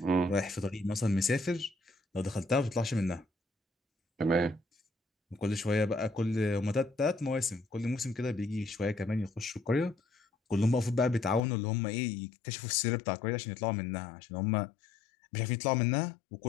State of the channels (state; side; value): drops out; right; at 11.4 s